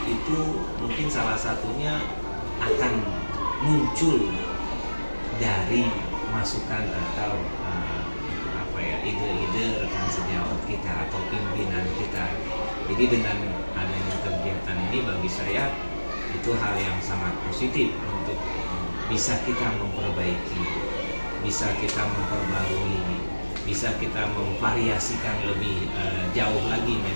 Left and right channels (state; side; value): inverted; both; correlation -1.00